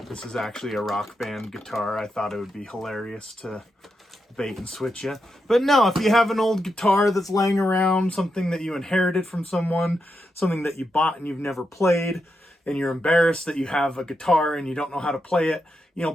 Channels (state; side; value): normal; both; correlation 0.85